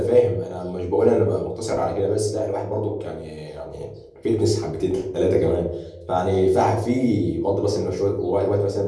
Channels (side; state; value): both; identical; correlation 1.00